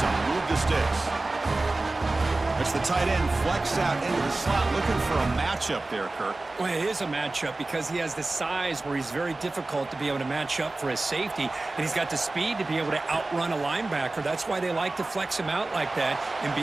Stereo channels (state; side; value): quieter; left; 3.1 dB